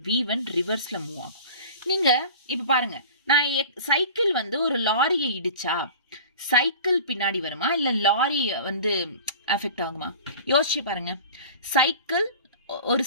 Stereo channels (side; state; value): both; inverted; correlation -0.39